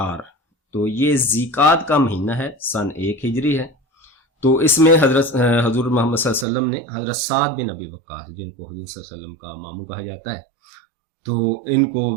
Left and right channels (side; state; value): left; drops out; at 6.5 s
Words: تو یہ ذیقعد کا مہینہ ہے، سن 1 ہجری ہے۔ تو اس میں حضور محمد صلی اللہ علیہ وسلم نے حضرت سعد بن ابی وقاص، جن کو حضور صلی اللہ علیہ وسلم کا ماموں کہا جاتا ہے، تو ان کو